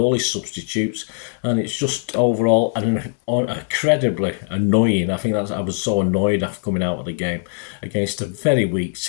his substitutes, and it's just overall incredibly annoying. I think I was so annoyed after coming out of the game against a very weak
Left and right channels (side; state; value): right; silent; 57 dB below the other